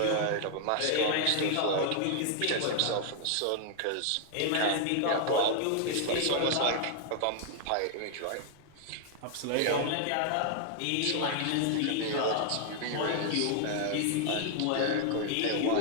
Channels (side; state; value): both; different; correlation 0.00